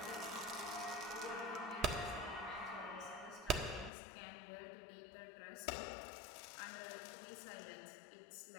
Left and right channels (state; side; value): drops out; right; at 3.9 s